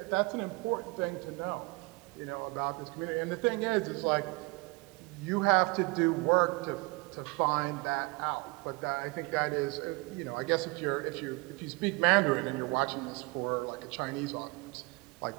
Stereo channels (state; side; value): quieter; left; 26.8 dB